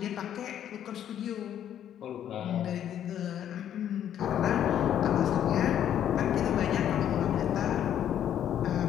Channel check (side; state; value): right; quieter; 10.3 dB